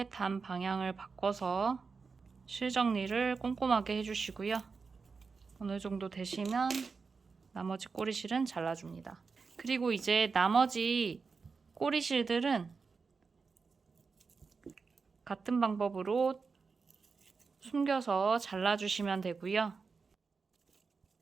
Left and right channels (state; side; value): quieter; left; 4.9 dB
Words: 단 방향을 바꿔서 실 정리를 꼼꼼하게 해주시고요. 어느 정도 되시면 나머지 꼬리실은 잘라줍니다. 그리고 이제 나머지 꼬리실들은 같은 방법으로 숨겨서 잘라주시면 되고요.